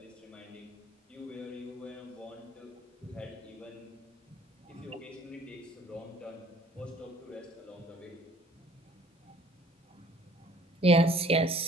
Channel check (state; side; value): normal; both; correlation 0.55